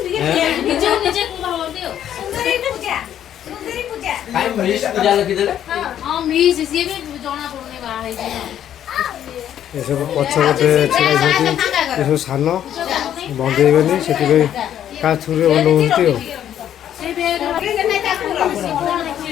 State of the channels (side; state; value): right; quieter; 10.5 dB